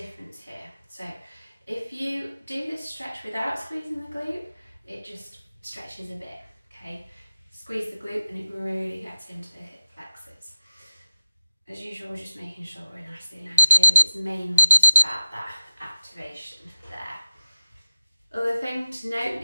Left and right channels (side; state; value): both; inverted; correlation -0.86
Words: here. So if you do this stretch without squeezing the glute, it just stretches a bit, okay? Squeeze the glute and it really gets into the hip flexors. As usual, we're just making sure we're nicely aligned here, but it's mainly just about that activation there. Other thing to note